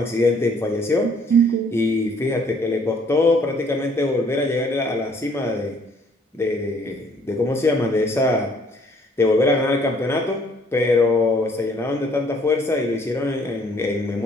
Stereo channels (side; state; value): both; normal; correlation 0.61